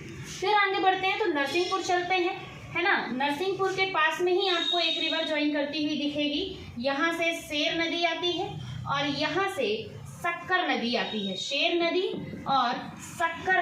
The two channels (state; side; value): identical; both; correlation 1.00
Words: फिर आगे बढ़ते हैं तो नरसिंहपुर चलते हैं, है ना। नरसिंहपुर के पास में ही आपको एक रिवर ज्वाइन करती हुई दिखेगी। यहाँ से शेर नदी आती है और यहाँ से सक्कर नदी आती है। शेर नदी और